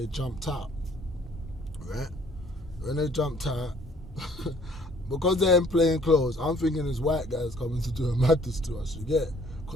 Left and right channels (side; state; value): both; normal; correlation 0.59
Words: jumped out, right? When they jumped out, because they're in plain clothes, I'm thinking this white guy's coming to do a madness to us, you get it?